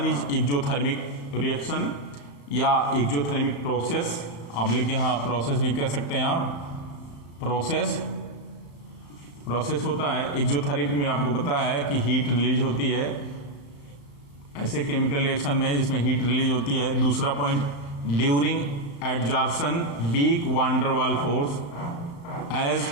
इज एक्सोथर्मिक रिएक्शन या एक्सोथर्मिक प्रोसेस, ऑब्लिक यहाँ प्रोसेस भी कह सकते हैं आप। प्रोसेस होता है एक्सोथर्मिक में, आपको पता है कि हीट रिलीज होती है ऐसे केमिकल रिएक्शन में जिसमें हीट रिलीज होती है। दूसरा point, during adsorption weak van der Waals force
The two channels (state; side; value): late; right; 35 ms